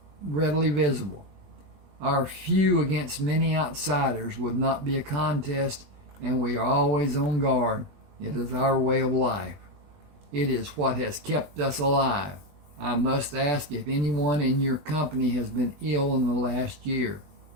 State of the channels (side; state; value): left; late; 20 ms